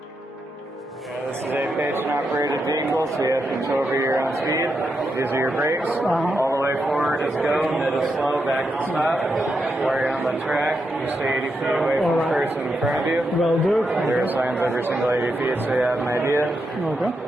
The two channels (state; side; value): normal; both; correlation 0.84